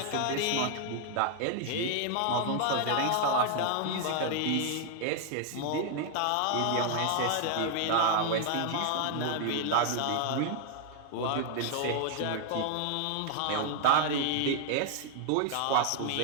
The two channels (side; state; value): both; different; correlation 0.00